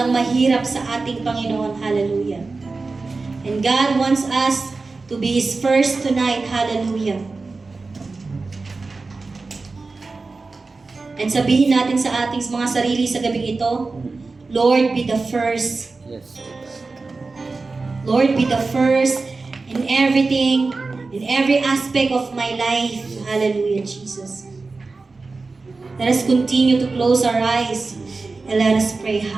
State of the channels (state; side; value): quieter; left; 3.8 dB